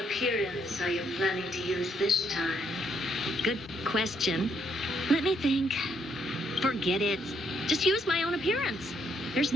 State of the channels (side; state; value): both; normal; correlation 0.73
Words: are you planning to use this time? Good question. Let me think. Forget it. Just use my own appearance. There's